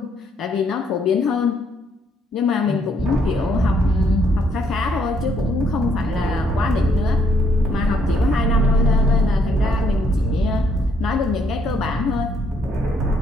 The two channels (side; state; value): both; normal; correlation 0.70